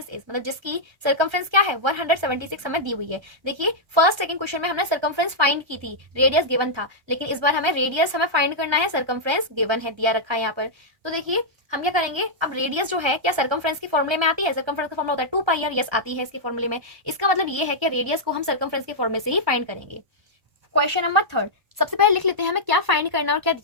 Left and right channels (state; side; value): late; left; 1.2 ms